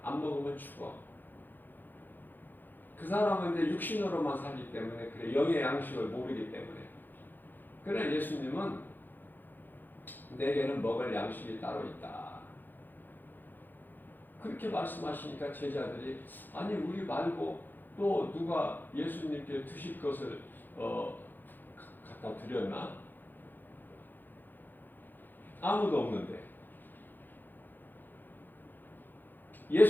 안 먹으면 죽어. 그 사람은 이제 육신으로만 살기 때문에 그래. 영의 양식을 모르기 때문에. 그러나 예수님은 내게는 먹을 양식이 따로 있다. 그렇게 말씀하시니까 제자들이 아니 우리 말고 또 누가 예수님께 드실 것을 갖다 드렸나? 아무도 없는데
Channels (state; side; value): late; right; 0.089 ms